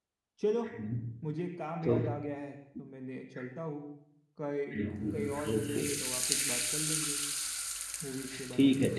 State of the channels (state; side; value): identical; both; correlation 1.00